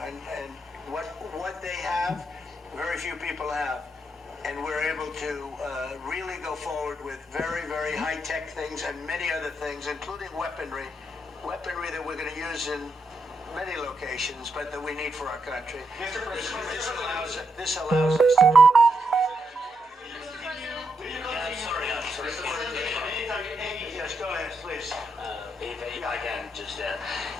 and what they have, very few people have. And we're able to really go forward with very, very high-tech things and many other things, including weaponry that we're going to use in many locations, but that we need for our country. Mr. President, This allows us to do Sorry. Yes, go ahead, please. If I can just,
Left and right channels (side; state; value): both; normal; correlation 0.81